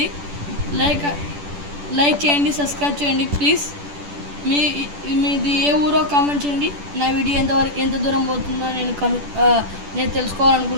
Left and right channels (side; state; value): left; late; 10 ms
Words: లైక్ చేయండి, సబ్స్క్రైబ్ చేయండి ప్లీజ్. మీది ఏ ఊరో కామెంట్ చేయండి. నా వీడియో ఎంత దూరం పోతుందో నేను